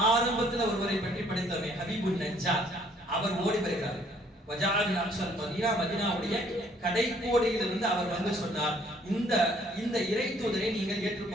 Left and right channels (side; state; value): both; normal; correlation 0.62